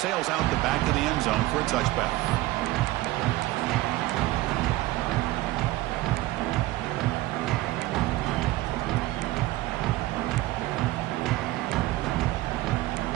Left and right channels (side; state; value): left; quieter; 17.5 dB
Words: out the back of the end zone for a touchback.